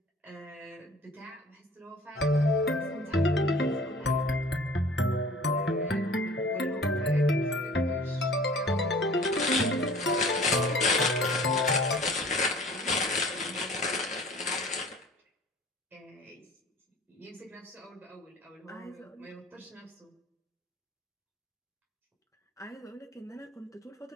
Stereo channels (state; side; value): normal; both; correlation 0.48